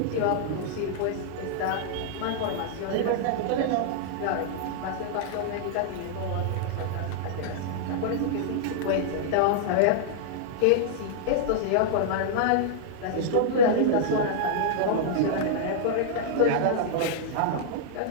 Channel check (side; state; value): both; different; correlation -0.01